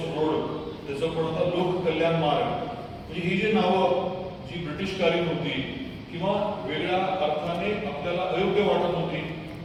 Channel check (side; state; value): both; identical; correlation 1.00